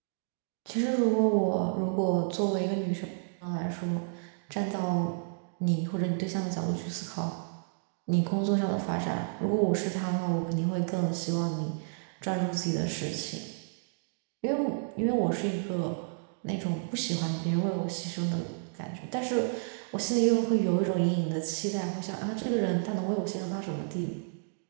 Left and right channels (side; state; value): left; silent; digital silence